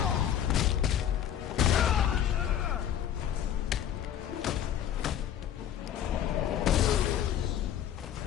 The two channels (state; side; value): quieter; right; 10.2 dB